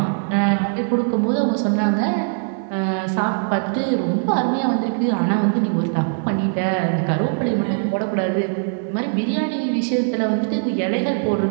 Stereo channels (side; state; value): left; silent; digital silence